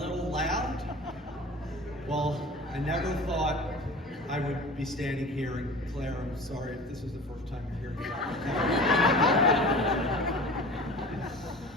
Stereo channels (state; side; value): normal; both; correlation 0.38